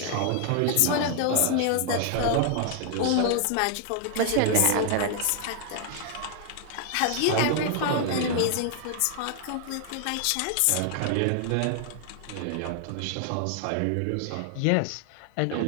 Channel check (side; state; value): both; different; correlation 0.00